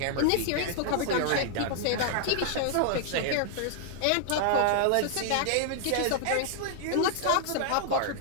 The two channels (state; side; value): different; both; correlation -0.01